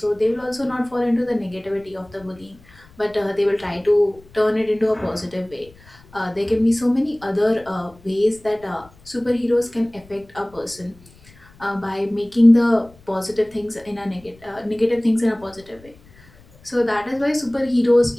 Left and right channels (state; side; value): noise; left; rumble, 26 dB below the sound